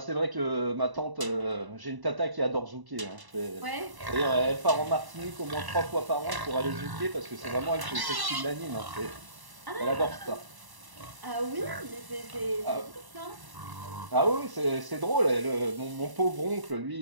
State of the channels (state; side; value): late; left; 1.0 ms